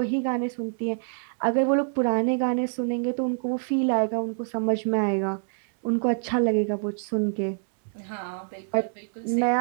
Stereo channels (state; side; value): silent; left; 61 dB below the other